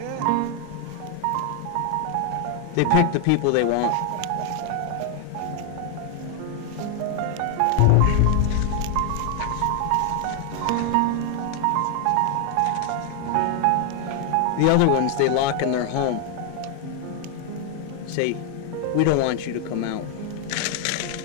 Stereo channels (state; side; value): different; both; correlation 0.00